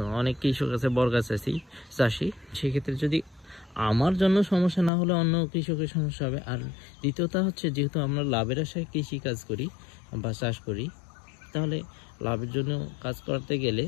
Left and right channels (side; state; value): right; drops out; at 4.9 s